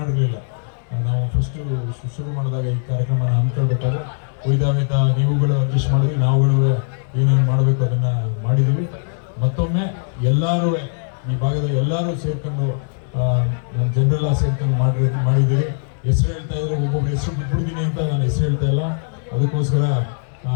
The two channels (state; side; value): silent; right; digital silence